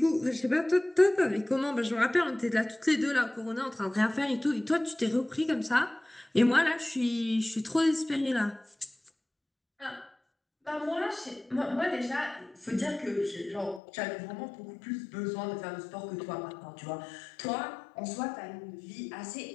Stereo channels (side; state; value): right; drops out; at 13.8 s